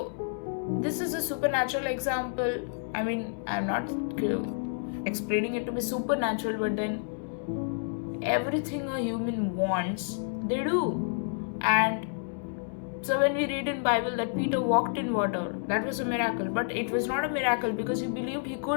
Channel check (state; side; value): silent; right; digital silence